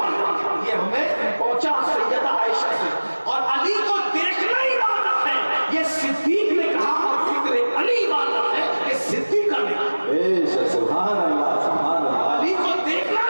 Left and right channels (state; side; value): inverted; both; correlation -1.00